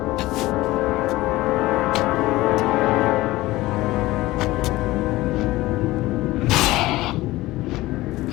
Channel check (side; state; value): right; quieter; 18.3 dB